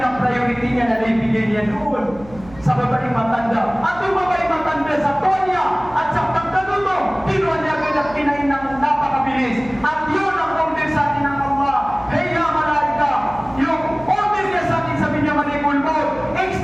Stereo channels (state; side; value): noise; right; hum, 20 dB below the sound